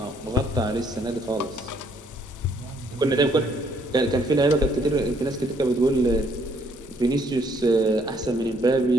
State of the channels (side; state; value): both; normal; correlation 0.67